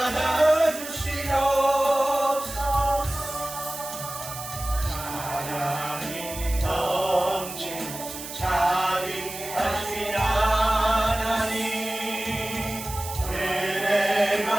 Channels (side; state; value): right; noise; hiss, 10 dB below the sound